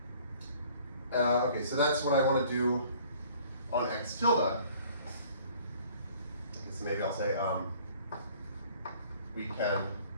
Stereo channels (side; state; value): both; inverted; correlation -0.54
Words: Okay, so that's what I want to do on x tilde. I guess maybe I'll say we can